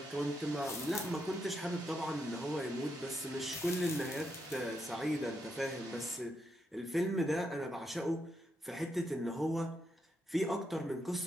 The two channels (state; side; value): normal; both; correlation 0.81